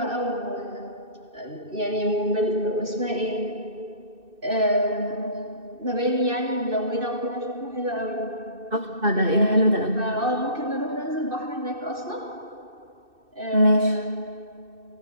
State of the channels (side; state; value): left; late; 2.6 ms